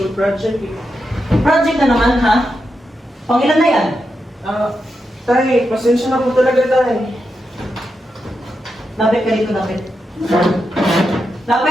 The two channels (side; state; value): both; normal; correlation 0.86